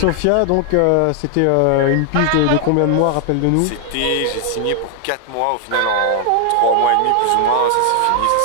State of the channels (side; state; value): both; different; correlation 0.00